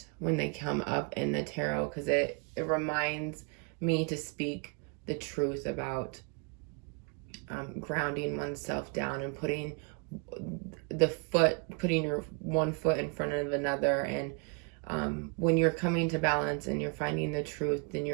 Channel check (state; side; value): quieter; left; 35.2 dB